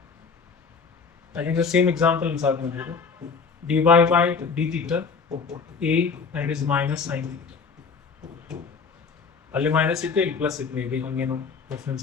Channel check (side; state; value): right; quieter; 5.2 dB